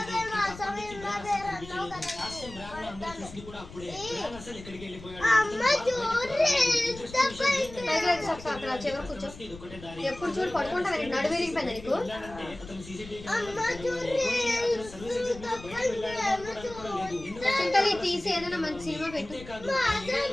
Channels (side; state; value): left; noise; rumble, 16 dB below the sound